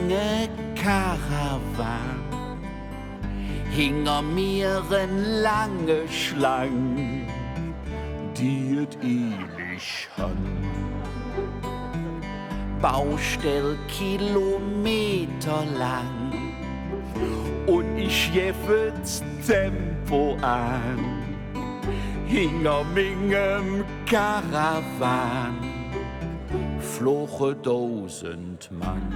Karawan. Hinter mir ein lange Schlang, die et ewig han. Baustell Kilometer lang und ich jeffet's Tempo an. Hinter mingem Karawan floche 1000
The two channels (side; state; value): both; identical; correlation 1.00